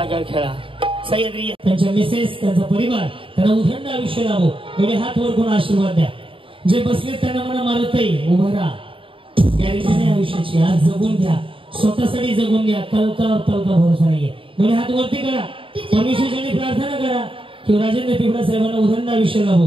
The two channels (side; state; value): left; late; 0.25 ms